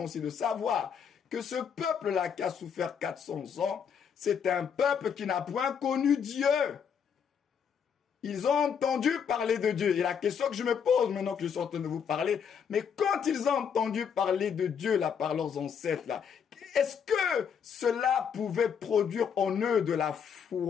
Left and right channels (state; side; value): quieter; right; 7.3 dB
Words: aussi de savoir que ce peuple-là qui a souffert 400 ans, c'est un peuple qui n'a point connu Dieu. Ils ont entendu parler de Dieu. Et la question que je me pose maintenant que je suis en train de vous parler, mais quand ils ont entendu parler de Dieu là par leurs ancêtres là, est-ce que cela pouvait produire en eux de la